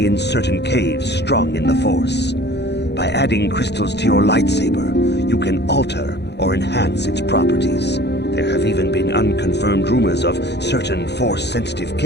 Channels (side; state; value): right; late; 0.50 ms